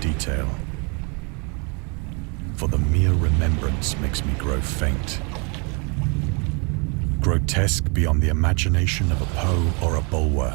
for the mere remembrance makes me grow faint. Grotesque beyond the imagination of a Poe or a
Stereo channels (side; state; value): left; quieter; 33.6 dB